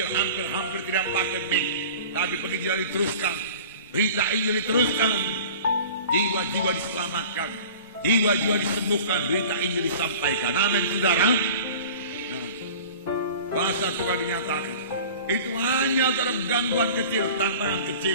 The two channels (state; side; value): inverted; both; correlation -0.41